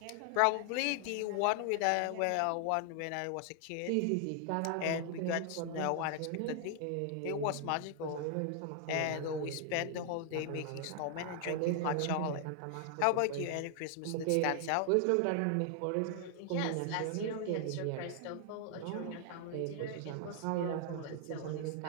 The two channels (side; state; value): both; different; correlation 0.00